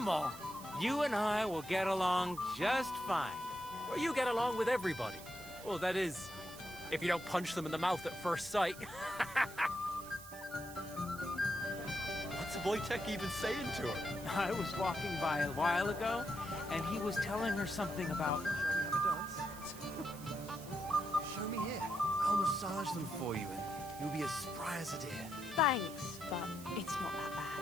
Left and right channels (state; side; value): noise; right; hiss, 16 dB below the sound